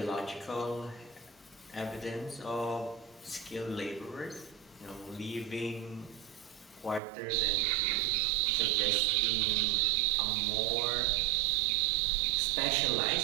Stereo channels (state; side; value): drops out; left; at 7.0 s